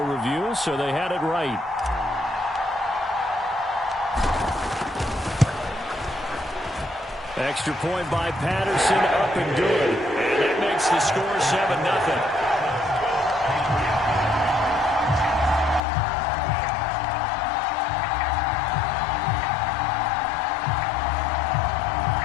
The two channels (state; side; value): drops out; right; at 15.8 s